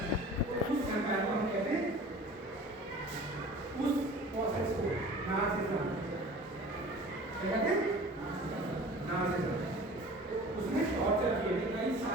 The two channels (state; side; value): normal; both; correlation 0.43